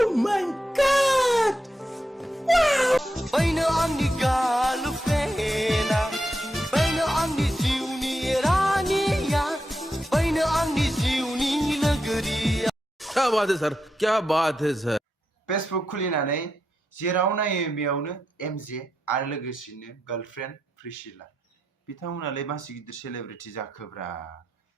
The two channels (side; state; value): both; normal; correlation 0.85